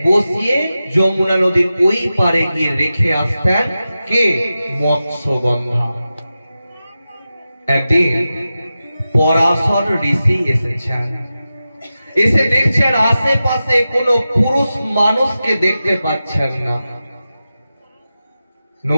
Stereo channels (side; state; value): both; inverted; correlation -0.93